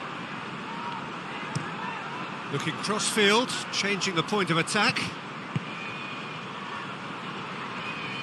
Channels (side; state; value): both; identical; correlation 1.00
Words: Looking cross-field, changing the point of attack.